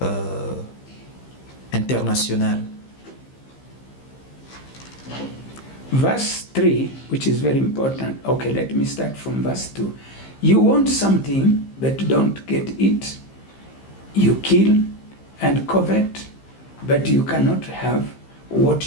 internationale. Verse 3, which is very important. Okay, let me start from verse 2. You want something, but don't get it. You kill and covet, but you cannot have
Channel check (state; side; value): late; right; 15 ms